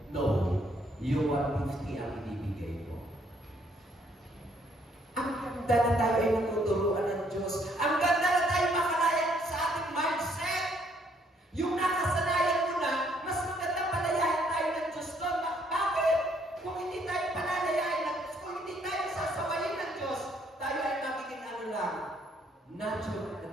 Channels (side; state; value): both; normal; correlation 0.67